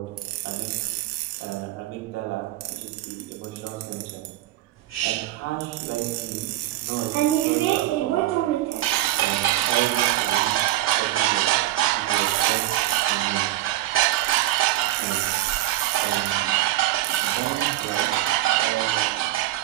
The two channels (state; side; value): quieter; left; 15.3 dB